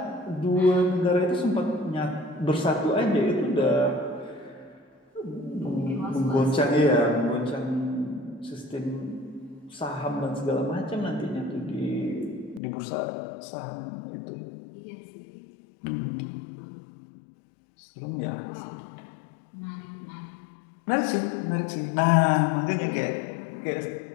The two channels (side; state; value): right; drops out; at 12.6 s